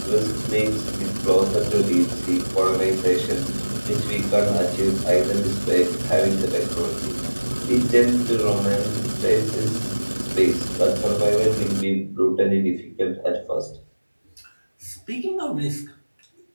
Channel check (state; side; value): inverted; both; correlation -1.00